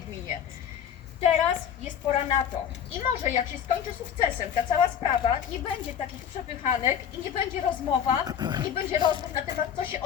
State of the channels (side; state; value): right; quieter; 8.7 dB